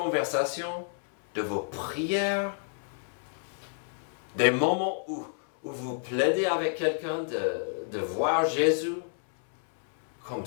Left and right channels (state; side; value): silent; right; 58 dB below the other